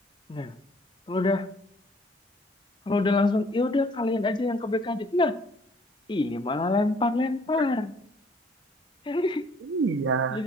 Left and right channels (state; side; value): normal; both; correlation 0.59